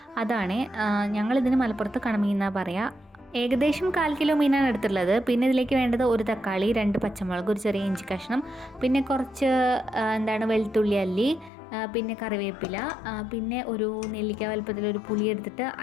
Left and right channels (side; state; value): right; drops out; at 11.5 s